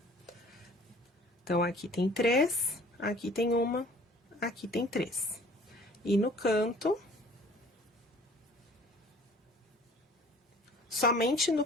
Então, aqui tem 3, aqui tem uma, aqui tem 3. E no canto, somente no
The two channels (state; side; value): normal; both; correlation 0.50